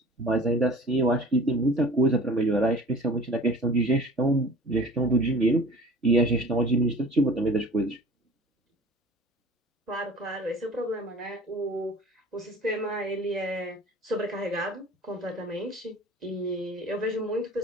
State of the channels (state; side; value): normal; both; correlation 0.44